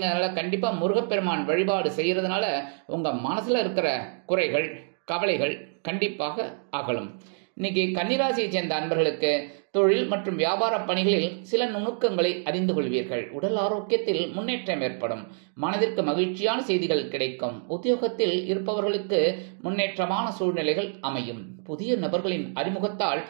கண்டிப்பா முருகப்பெருமான் வழிபாடு செய்யறதுனால உங்க மனசுல இருக்கிற குறைகள் கவலைகள் கண்டிப்பாக அகலும். இன்னைக்கு கன்னிராசியை சேர்ந்த அன்பர்களுக்கு தொழில் மற்றும் வியாபார பணிகளில் சில நுணுக்கங்களை அறிந்து கொள்வீர்கள். உடல் ஆரோக்கியத்தில் முன்னேற்றம் ஏற்படும். மனதிற்கு மகிழ்ச்சியான செய்திகள் கிடைக்கும். உத்தியோகத்தில் இருப்பவர்களுக்கு முன்னேற்றமான சூழ்நிலைகள் அமையும். புதிய நபர்களின் அறிமுகத்தால்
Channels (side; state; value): left; silent; 60 dB below the other